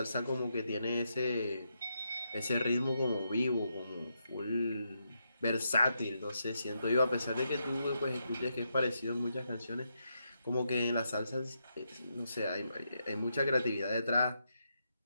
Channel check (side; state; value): both; inverted; correlation -0.82